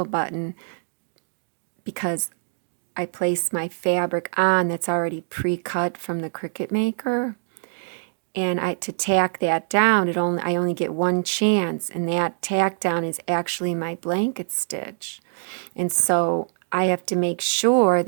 button because I place my fabric on that's already pre-cut from the Cricut Maker. And to tack that down, I only get one chance, and that tack down is actually my blanket stitch. And so I have to make sure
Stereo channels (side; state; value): left; silent; digital silence